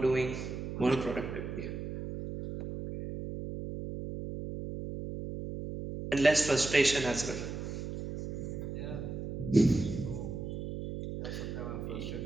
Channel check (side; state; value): right; noise; hum, 6 dB below the sound